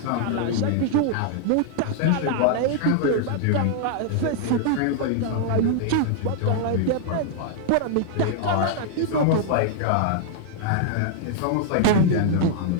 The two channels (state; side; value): different; both; correlation 0.00